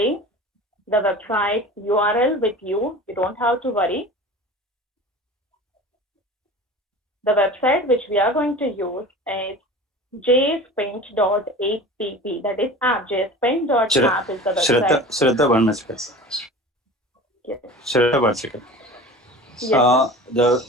the website URL with you. You don't have to worry. The website which we are going to use is jspaint.app. That is app. jspaint.app is the website. Shraddha, 1 minute. Yes. Shraddha, 1 second. Yes,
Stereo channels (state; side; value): normal; both; correlation 0.37